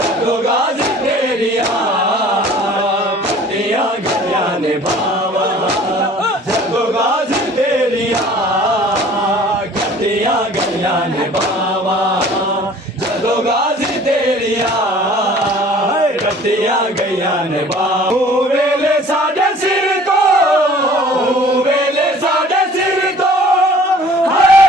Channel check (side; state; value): both; normal; correlation 0.50